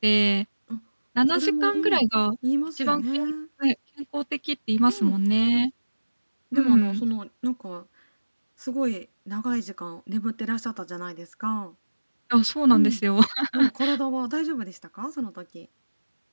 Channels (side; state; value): both; inverted; correlation -1.00